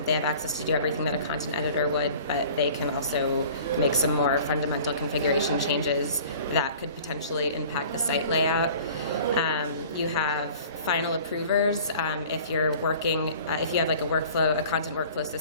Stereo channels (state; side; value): inverted; both; correlation -0.46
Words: have access to do everything that a content editor would, but they can also make some more fundamental configuration changes that could potentially impact the site layout. You have final approvers. If you're working, if you have like a content workflow